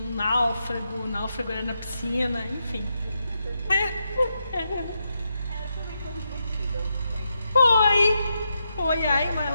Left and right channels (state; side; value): inverted; both; correlation -0.84